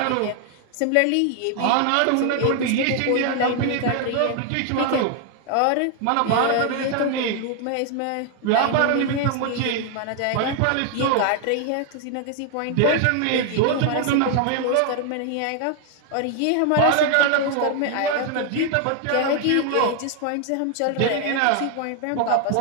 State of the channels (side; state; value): both; different; correlation 0.00